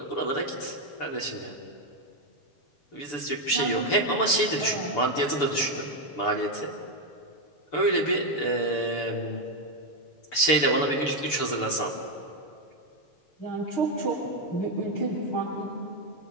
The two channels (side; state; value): right; late; 6.9 ms